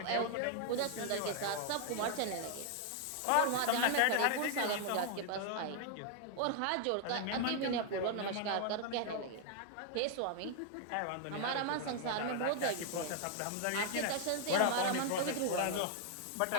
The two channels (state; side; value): different; both; correlation 0.00